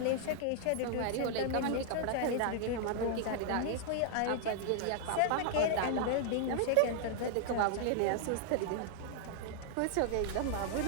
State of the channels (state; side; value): different; both; correlation -0.01